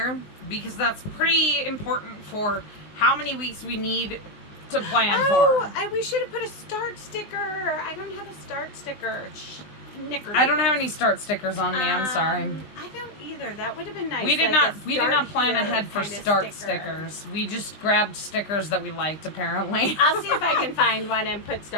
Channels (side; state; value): right; late; 20 ms